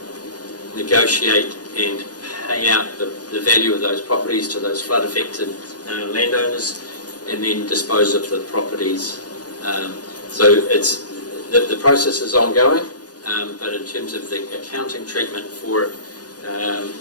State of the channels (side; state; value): right; late; 0.69 ms